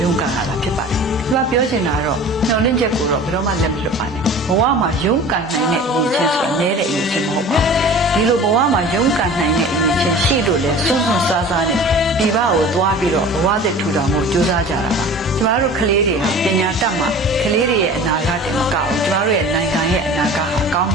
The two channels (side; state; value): both; normal; correlation 0.41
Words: ရုန်းကန်လာတာဖြစ်ပါတယ်ဒီမှာပြောချင်တာကတော့မျှော်လင့်ချက်ကိုတော့ဘယ်တော့မှလက်မလွတ်ပါနဲ့ဘဝမှာရုန်းကန်နိုင်တဲ့အရေးချင်းဆိုတာနည်းတဲ့အရေးချင်းမဟုတ်ပါဘူးဒီလိုဘဝမှာရုန်းကန်နိုင်တဲ့အရေးချင်းရှိလို့လဲစွန့်စွန့်စားစားနဲ့ပြည်ပကိုသွားပြီးတော့ဘဝသစ်ထူထောင်ဖို့ကြိုးစားကြတာပါကျမတို့ကလေးတွေဟာပညာတတ်မှကလေးတွေရဲ့အနာဂတ်တင်မကဘူးကျမတို့ရဲ့နိုင်ငံရဲ့အနာဂတ်ဟာကောင်း